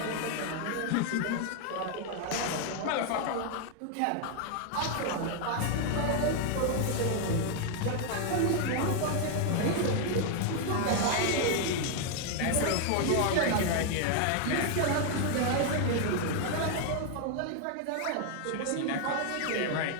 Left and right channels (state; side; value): different; both; correlation 0.00